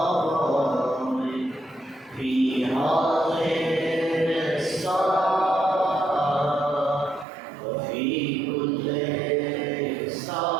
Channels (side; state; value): left; drops out; at 7.2 s